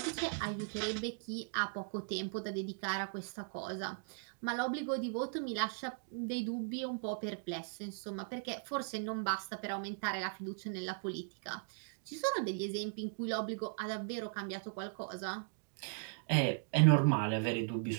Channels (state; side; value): silent; left; digital silence